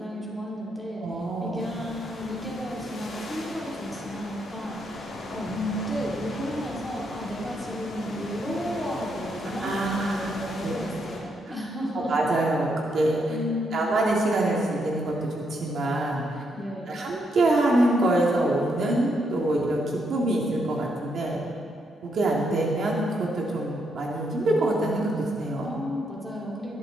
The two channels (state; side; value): normal; both; correlation 0.77